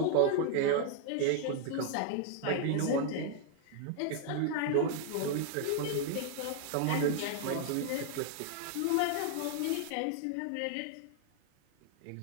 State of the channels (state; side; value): different; both; correlation 0.00